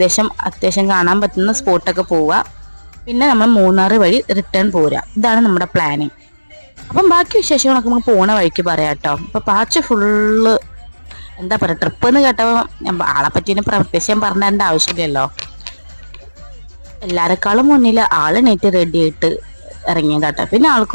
അത്യാവശ്യം കാണാൻ പറ്റുന്ന സ്പോട്ടൊക്കെ പോവുക. പിന്നെ നമ്മൾ മൂന്നാർ വഴി റിട്ടേൺ പോരുക. ഇതാണ് നമ്മുടെ പ്ലാനിങ്. അപ്പം ബാക്കി വിശേഷങ്ങളൊക്കെ നമുക്ക് പോണ വഴിക്ക് പറയാം കേട്ടോ. അപ്പൊ പാച്ച് ഫുള്ള് എന്താ പറയുക, ട്രിപ്പ് എന്ന് കേട്ടപ്പോൾ ആളെ പറ്റി പ്രത്യേകം പറഞ്ഞേണ്ട ആവശ്യമില്ലല്ലോ. എല്ലാരെക്കാളും മുന്നിൽ ആള് നെറ്റ് റെഡി ആയിട്ട് ഇറങ്ങിയതാട്ടോ. പിന്നെ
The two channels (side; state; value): both; inverted; correlation -1.00